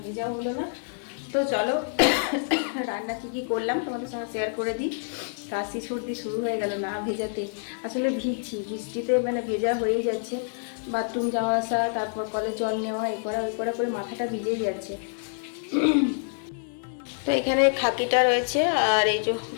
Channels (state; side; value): silent; right; digital silence